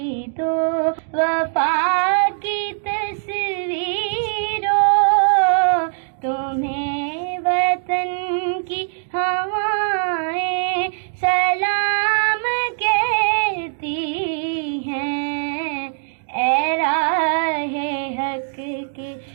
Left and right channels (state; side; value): silent; left; digital silence